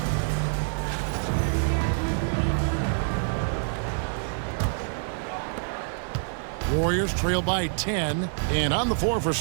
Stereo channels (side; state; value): left; silent; 60 dB below the other